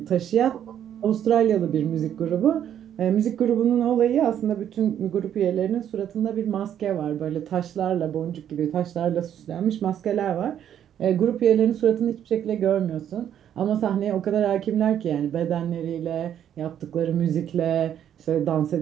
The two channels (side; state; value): left; quieter; 9.9 dB